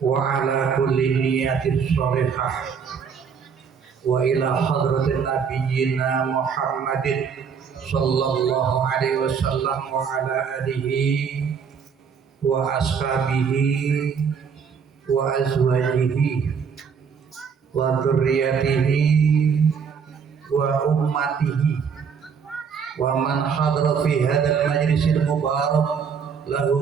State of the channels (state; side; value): quieter; left; 6.5 dB